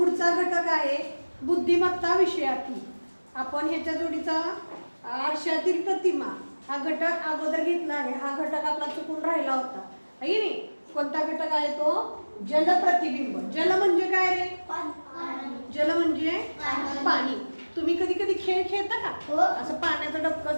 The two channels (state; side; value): inverted; both; correlation -1.00